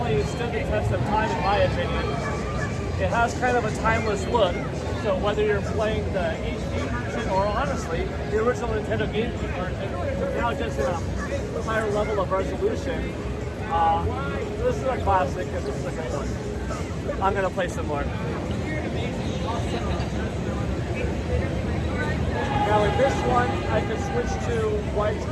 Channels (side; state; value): both; identical; correlation 1.00